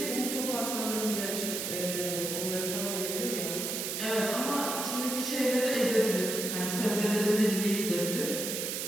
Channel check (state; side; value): noise; right; hiss, 3 dB below the sound